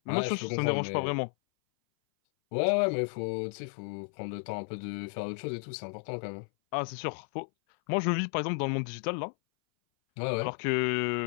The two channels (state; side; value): silent; right; 56 dB below the other